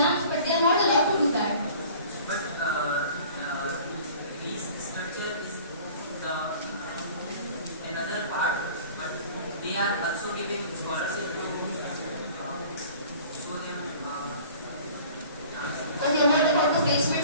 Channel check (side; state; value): both; inverted; correlation -0.47